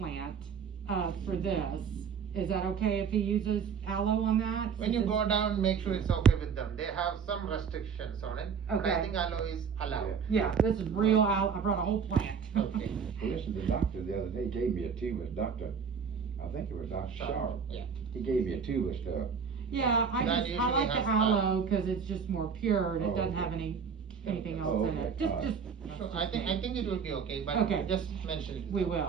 for this. Is that okay if he uses aloe on that? When you go down, make sure it's okay with them. They have some restrictions on it. But Okay. I think aloe is allowed. Yeah, this is real aloe, I brought a whole plant. Okay. Well, listen, the doctor the other day gave me a tube of Dr. I think it was Dr. Sharp. Yeah. He gave me a tube of stuff. Yeah, That I usually like the has aloe, cause it's just more pure, and it Oh, doesn't okay. have anything Oh, else in okay. it. Just, Alright. So I think it will be okay, but Okay. just mention it. we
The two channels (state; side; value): quieter; left; 6.4 dB